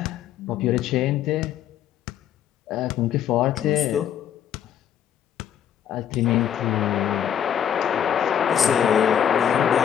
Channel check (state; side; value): quieter; right; 9.4 dB